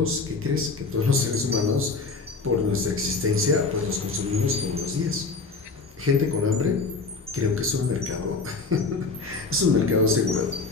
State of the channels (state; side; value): quieter; right; 4.1 dB